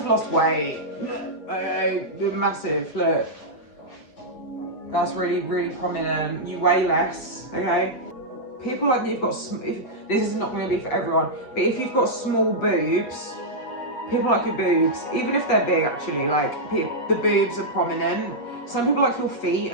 lost weight. Massive, look. That's really, really prominent. You weigh less, okay? people like you've got, this is not going to be for everyone, but if you've got small boobs, people like your boobs, even if they're big actually, like the boobs are prominent. Some people like your feet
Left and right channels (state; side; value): late; right; 7.9 ms